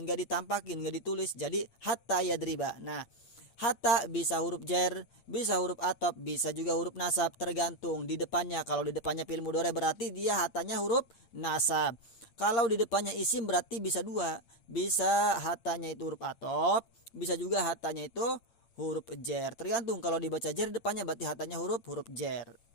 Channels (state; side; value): late; right; 8.8 ms